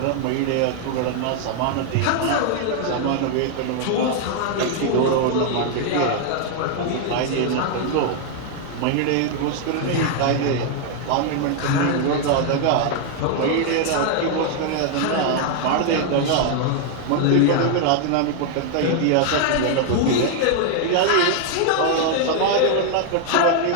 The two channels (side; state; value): both; different; correlation 0.00